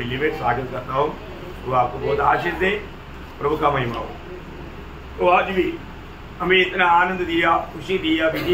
में स्वागत करता हूँ। वो आपको बहुत आशीष दे, प्रभु का महिमा हो। तो आज भी हमें इतना आनंद दिया, खुशी दिया,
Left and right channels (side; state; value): both; identical; correlation 1.00